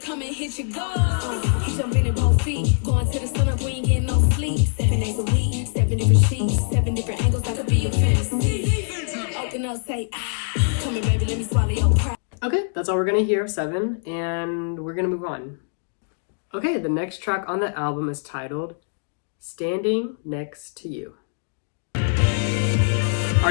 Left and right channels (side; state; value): right; silent; digital silence